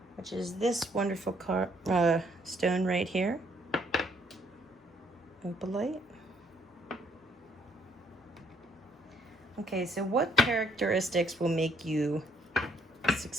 which is this wonderful stone right here. Opalite. Okay, so what characteristics will make you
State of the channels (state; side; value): normal; both; correlation 0.68